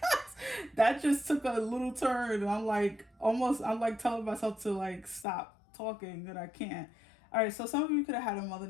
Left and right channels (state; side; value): drops out; right; at 5.2 s